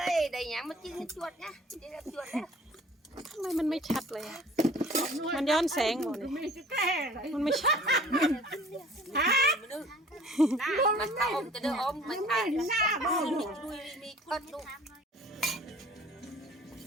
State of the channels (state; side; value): normal; both; correlation 0.50